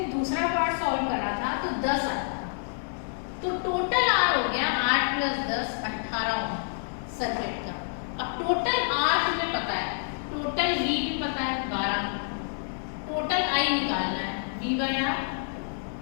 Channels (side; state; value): right; silent; digital silence